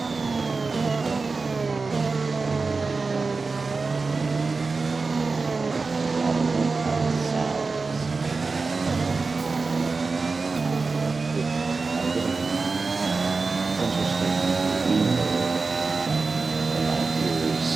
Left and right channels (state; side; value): quieter; left; 4.1 dB